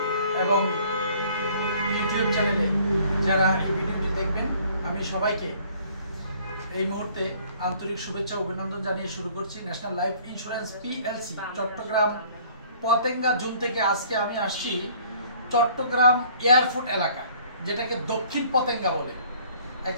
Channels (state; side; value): inverted; both; correlation -0.56